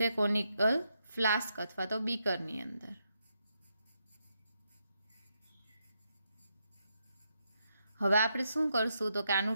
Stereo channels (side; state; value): both; inverted; correlation -0.81